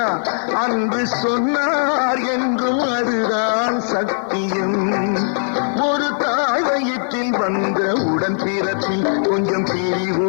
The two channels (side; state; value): right; silent; digital silence